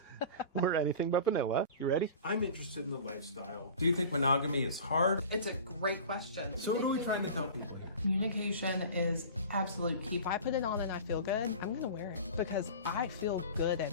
We're Anything But Vanilla. You ready? I'm interested in the lifestyle. Do you think monogamy is hard? It's a great question. So what are we trying to tell people here? Communication is absolute key. If I put it on and I feel good, I'm going to wear it because I feel good in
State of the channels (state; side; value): inverted; both; correlation -0.37